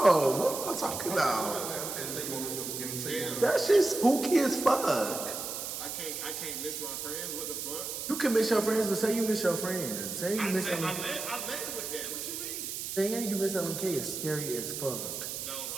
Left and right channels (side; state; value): right; noise; hiss, 5 dB below the sound